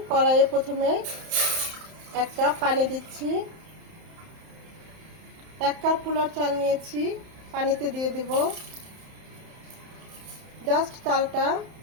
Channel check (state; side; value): late; left; 31 ms